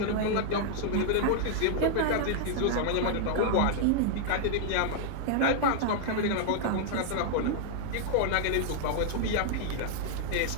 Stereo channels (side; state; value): both; different; correlation -0.01